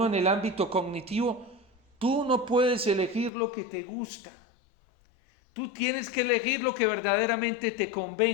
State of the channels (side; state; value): right; drops out; at 3.3 s